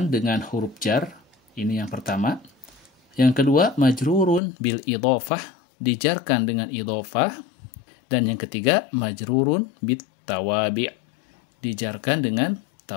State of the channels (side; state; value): right; drops out; at 4.4 s